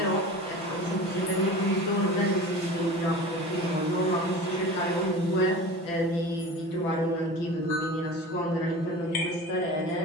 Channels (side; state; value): right; late; 5.9 ms